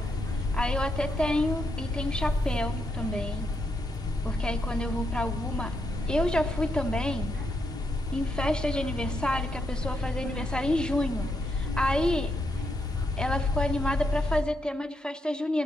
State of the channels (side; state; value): both; normal; correlation 0.80